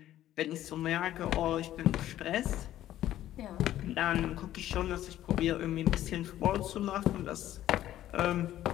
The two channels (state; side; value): quieter; right; 13.0 dB